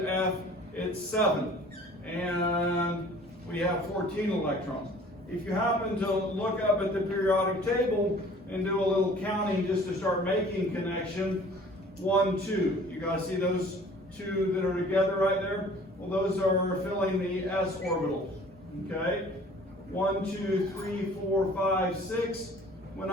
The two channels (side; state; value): both; normal; correlation 0.50